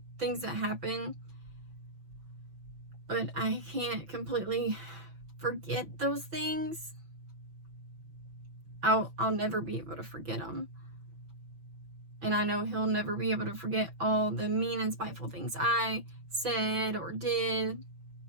things that happened, but I can't completely forget those things. I'll never be able to forget them. And I know he'll never be able to forget all the mean and spiteful things I said or did.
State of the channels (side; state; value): left; late; 6.0 ms